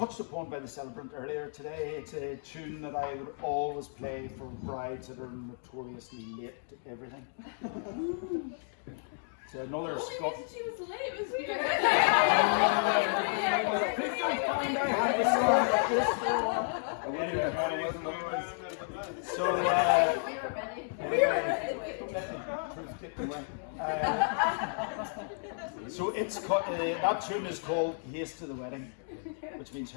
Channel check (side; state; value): right; silent; digital silence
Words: upon by the celebrant earlier today. It's a tune that I would always play for brides that are notoriously late to everything. It's another Scot. She was late. It was weird. So, so it's that tune is called "Haste to the Wedding," which means